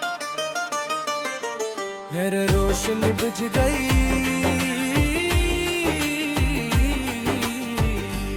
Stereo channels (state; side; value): identical; both; correlation 1.00